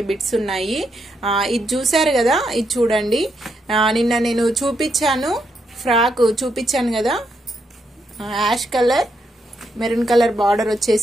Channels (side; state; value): both; normal; correlation 0.79